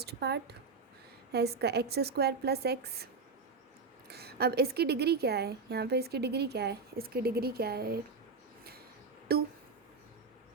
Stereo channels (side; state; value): left; quieter; 4.5 dB